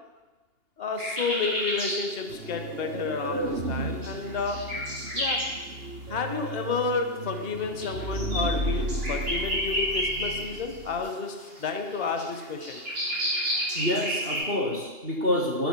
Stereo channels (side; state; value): left; late; 2.8 ms